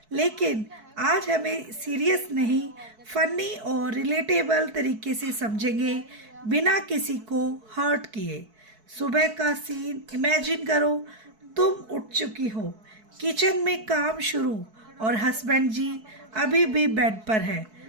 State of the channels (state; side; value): late; left; 4.6 ms